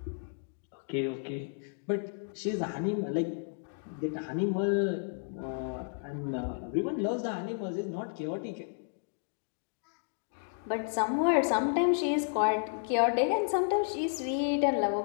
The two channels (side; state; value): right; silent; digital silence